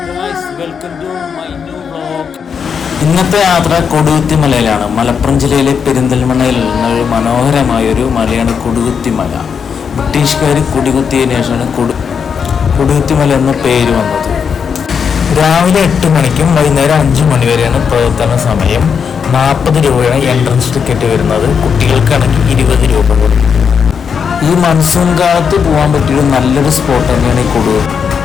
guys, welcome to my new vlog. ഇന്നത്തെ യാത്ര കൊടുകുത്തിമലയിലാണ്. മലപ്പുറം ജില്ലയിലെ പെരിന്തൽമണ്ണയിൽ നിന്നൊരു മനോഹരമായൊരു മലയാണ് കൊടുകുത്തിമല. ബ്രിട്ടീഷുകാർ കുടികുത്തിയതിനു ശേഷമാണ് കൊടുകുത്തിമല എന്ന പേര് വന്നത്. രാവിലെ 8 മണിക്കും വൈകുന്നേരം 5 മണി വരെയാണ് പ്രവർത്തന സമയം. 40 രൂപയാണ് എൻട്രൻസ് ടിക്കറ്റ് വരുന്നത്. കുട്ടികൾക്കാണെങ്കിൽ 20 രൂപ കൊടുക്കും. ഈ മൺസൂൺ കാലത്ത് പോകാൻ പറ്റിയൊരു നല്ലൊരു സ്പോട്ട് തന്നെയാണ് ഈ കൊടുകുത്തി.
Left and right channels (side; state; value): right; quieter; 6.6 dB